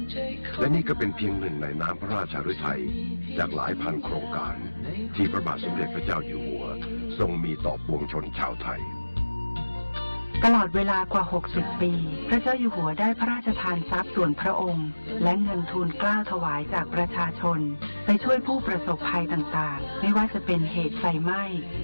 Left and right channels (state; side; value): inverted; both; correlation -1.00